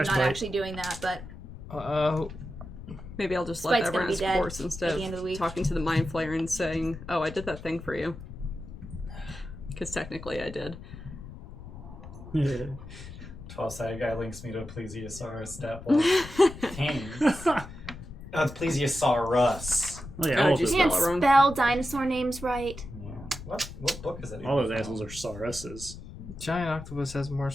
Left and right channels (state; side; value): noise; left; rumble, 13 dB below the sound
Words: not Spike. actually doing that, but Maybe I'll just Spite's let that gonna run be its dead course instead at the end of the week. talking to the Mind Flayer and saying, "Oh, I did that thing for you." Because technically, I did. 12-sided guy links me to a plesiosaur stat block. Thanks. Oh, it's Plesiosaurus. Oh yeah, Oh, all of just those, Can't spell it wrong. spell dinosaur names right. Yeah. What book is it? all those assholes are sauruses. Giant octopus has more